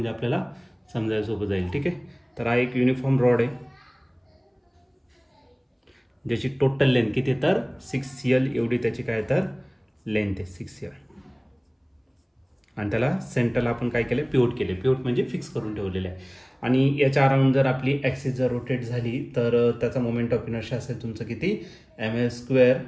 आपल्याला समजायला सोपं जाईल. ठीक आहे, तर हा एक युनिफॉर्म रॉड आहे, ज्याची टोटल लेंथ किती तर 6L एवढी त्याची काय तर लेंथ आहे 6L. आणि त्याला सेंटरला आपण काय केलं, पिवट केले. पिवट म्हणजे फिक्स करून ठेवलेले आहे. आणि याच्या अराउंड जर आपली ॲक्सिस जर रोटेट झाली तर त्याचा मोमेंट ऑफ इनर्शिया असेल तुमचं किती ml²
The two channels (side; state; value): both; identical; correlation 1.00